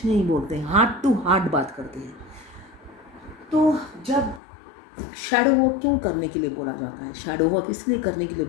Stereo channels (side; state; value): right; drops out; at 4.4 s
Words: नहीं बोलते हैं, हार्ट टू हार्ट बात करते हैं। तो जब शैडो वर्क क्यों करने के लिए बोला जाता है, शैडो वर्क इसलिए करने के लिए